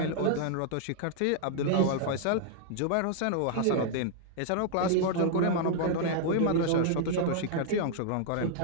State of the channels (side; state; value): both; different; correlation -0.01